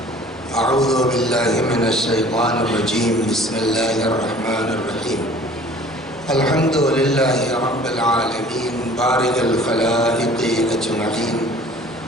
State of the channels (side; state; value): both; normal; correlation 0.50